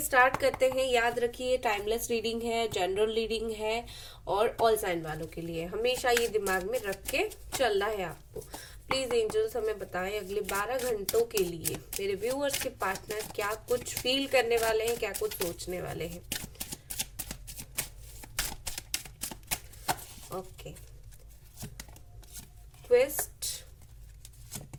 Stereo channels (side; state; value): both; identical; correlation 1.00